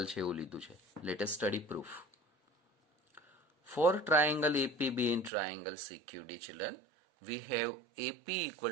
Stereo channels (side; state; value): left; drops out; at 5.3 s